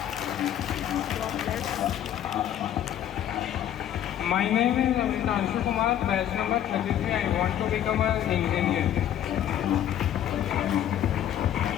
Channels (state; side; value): quieter; right; 10.8 dB